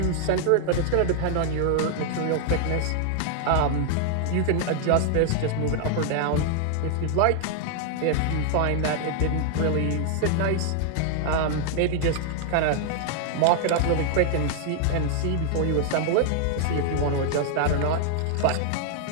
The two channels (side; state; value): both; different; correlation 0.00